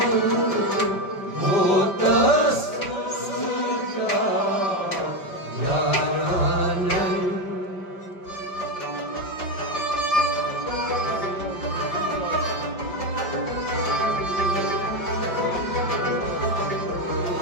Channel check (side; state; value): right; late; 5.0 ms